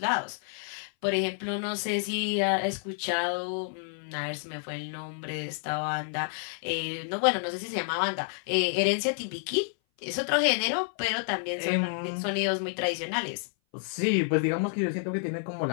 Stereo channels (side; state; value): right; silent; 57 dB below the other